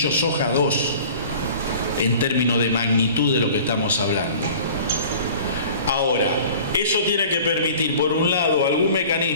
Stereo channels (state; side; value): inverted; both; correlation -0.45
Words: soja 2 en términos de magnitud de lo que estamos hablando. Ahora, eso tiene que permitir, por un lado, algún